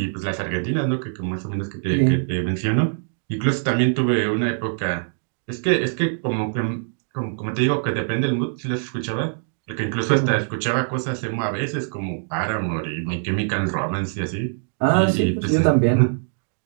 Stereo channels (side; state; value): left; silent; digital silence